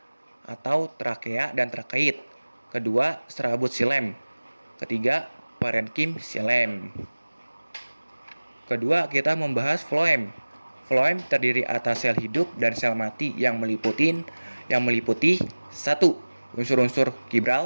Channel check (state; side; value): inverted; both; correlation -1.00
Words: atau trakea dan trakeit. Kedua, serabut xilem. Ketiga, parenkim xilem. Kedua, kita membahas floem. Floem terdiri atas sel hidup dan sel mati yang meliputi 1. Unsur-unsur